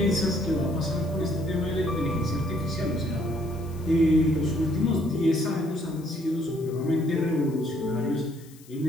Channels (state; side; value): noise; left; hiss, 24 dB below the sound